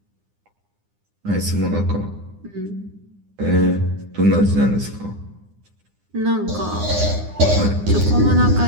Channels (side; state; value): left; late; 9.8 ms